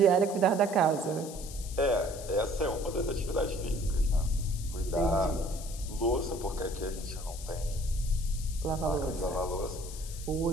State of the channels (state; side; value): noise; left; hiss, 13 dB below the sound